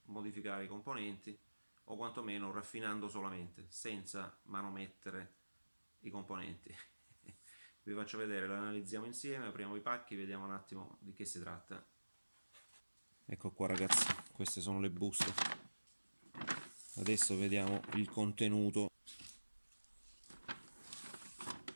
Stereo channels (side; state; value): both; inverted; correlation -1.00